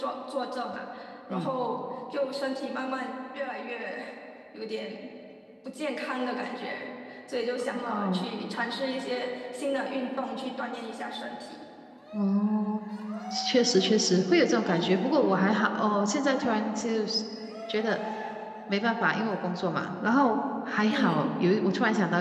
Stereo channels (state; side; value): identical; both; correlation 1.00